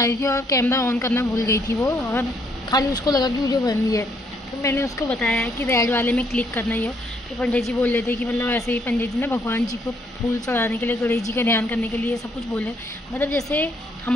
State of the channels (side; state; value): both; normal; correlation 0.70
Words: रही थी और कैमरा ऑन करना भूल गई थी वो, और खाली उसको लगा कि वीडियो बन रही है। तो मैंने उसको बताया कि रेड वाले में क्लिक करना ही हो। फिर पंडित जी बोल रहे थे कि मतलब ऐसे ही पंडित जी ना भगवान जी को फूल चढ़ाने के लिए, गणेश जी का ध्यान करने के लिए सब कुछ बोले। मतलब जैसे